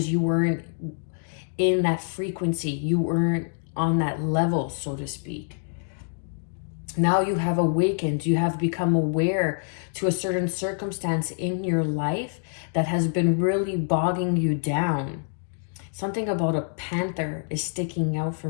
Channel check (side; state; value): right; silent; digital silence